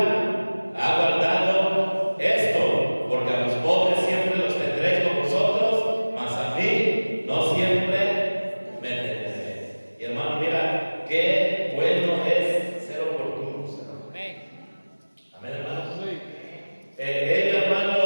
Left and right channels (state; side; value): inverted; both; correlation -1.00